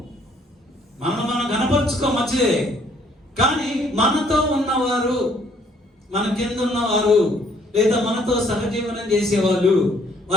గణపరుచుకో మంచిదే. కానీ మనతో ఉన్నవారు, మన కింద ఉన్నవారు, లేదా మనతో సహజీవనం చేసేవాళ్ళు,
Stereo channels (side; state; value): both; normal; correlation 0.64